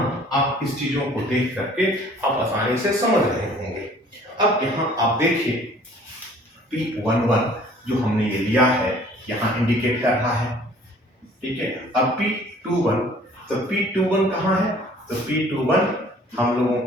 आप इस चीजों को देख करके आप आसानी से समझ रहे होंगे। अब यहाँ आप देखिए P11 जो हमने ये लिया है यहाँ इंडिकेट कर रहा है, ठीक है। अब P21, तो P21 कहाँ है, तो P21 हम लोगों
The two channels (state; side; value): normal; both; correlation 0.53